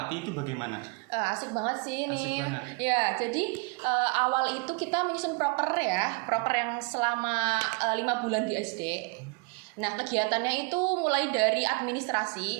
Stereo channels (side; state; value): left; quieter; 30.6 dB